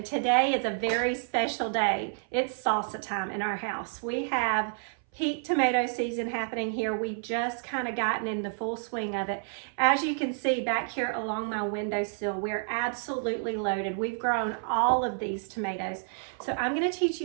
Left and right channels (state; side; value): silent; left; 58 dB below the other